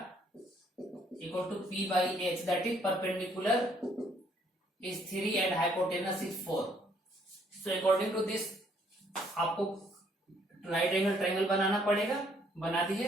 equal to p/h, that is perpendicular is 3 and hypotenuse is 4। So according to this आपको राइट एंगल ट्रायंगल बनाना पड़ेगा, बना दीजिए।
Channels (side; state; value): both; normal; correlation 0.66